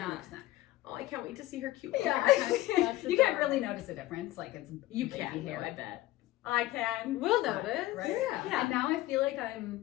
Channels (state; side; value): quieter; right; 16.8 dB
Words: 100%. Oh, I can't wait to see her cute. Yeah, That's you can't adorable. really notice a difference. Like it's You baby can, hair. though, I bet. I can. We'll notice. Right? Yeah. And now I feel like